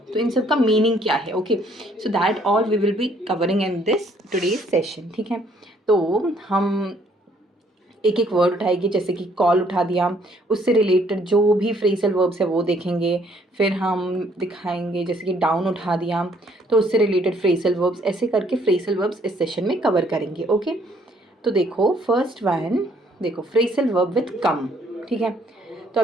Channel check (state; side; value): normal; both; correlation 0.65